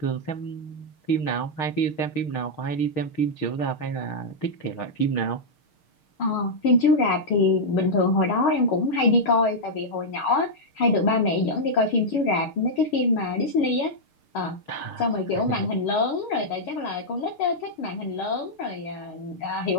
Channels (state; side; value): late; right; 6.5 ms